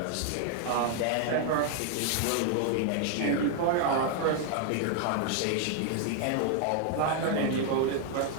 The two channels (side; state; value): both; different; correlation 0.00